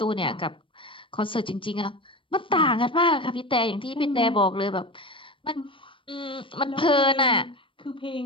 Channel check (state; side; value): late; right; 0.25 ms